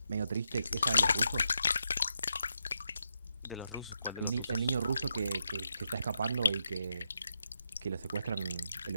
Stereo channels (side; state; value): both; inverted; correlation -0.83